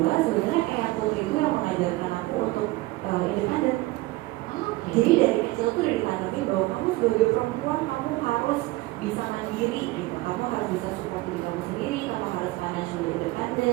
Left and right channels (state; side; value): quieter; left; 20.1 dB